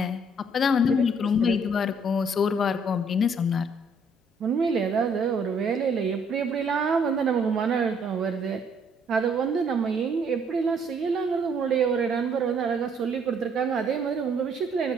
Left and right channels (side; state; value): both; normal; correlation 0.65